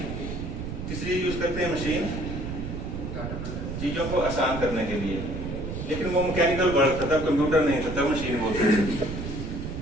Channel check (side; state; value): right; noise; rumble, 6 dB below the sound